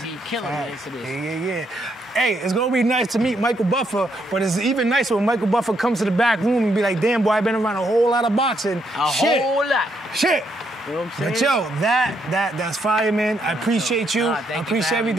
be killing it for this. Yeah. Hey, it's gonna be nice to meet Michael Buffer, but it's even nicer when Michael Buffer comes to the back room and be like, damn boy, I've been around a whole lot of boxing. Whole lot. Shit. You know what I'm saying? But yo, that's fire, man. I appreciate you. I appreciate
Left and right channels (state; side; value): normal; both; correlation 0.75